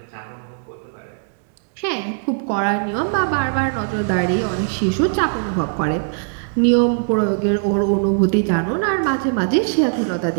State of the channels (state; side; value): silent; left; digital silence